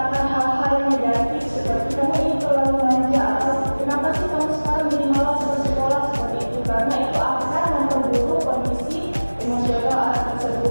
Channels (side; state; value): both; inverted; correlation -1.00